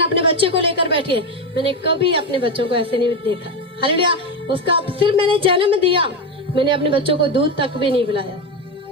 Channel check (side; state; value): both; normal; correlation 0.14